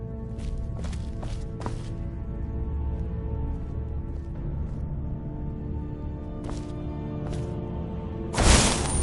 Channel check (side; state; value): both; identical; correlation 1.00